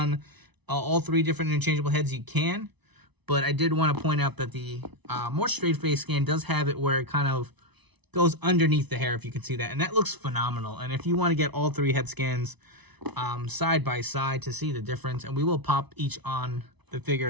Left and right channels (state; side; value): late; left; 1.0 ms